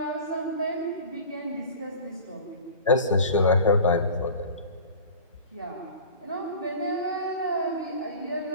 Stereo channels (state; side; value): inverted; both; correlation -0.38